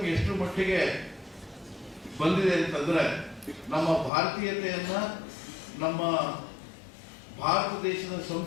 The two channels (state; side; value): drops out; right; at 4.1 s